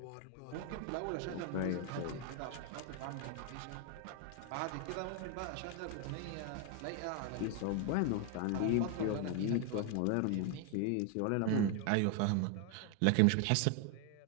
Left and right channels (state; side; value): different; both; correlation 0.01